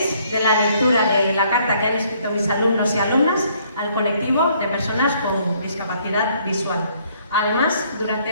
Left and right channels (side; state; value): both; inverted; correlation -0.65